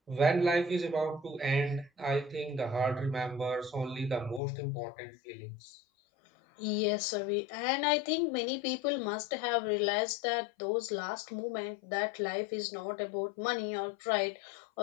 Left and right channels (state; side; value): drops out; right; at 4.4 s